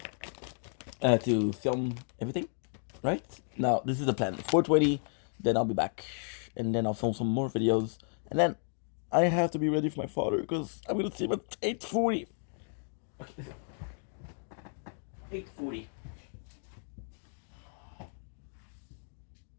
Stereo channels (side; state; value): right; silent; 56 dB below the other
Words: to film everything. Right now, this is the plan. 4:20, then I'll be back, and then I'll film some more videos, and then I have to be ready for my father because I'm gonna see him at 8:40. 8:40.